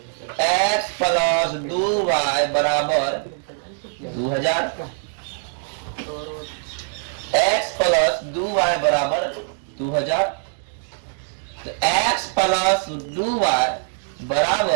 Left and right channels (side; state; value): left; silent; 64 dB below the other